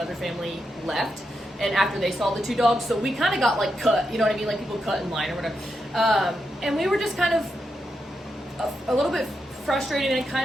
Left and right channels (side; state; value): both; normal; correlation 0.85